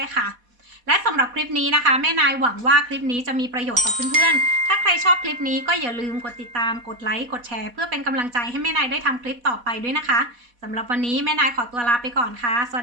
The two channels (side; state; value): left; late; 4.1 ms